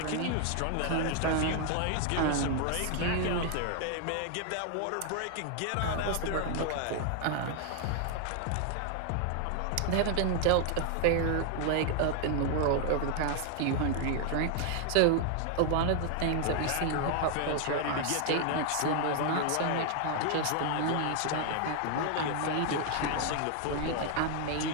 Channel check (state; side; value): different; both; correlation 0.00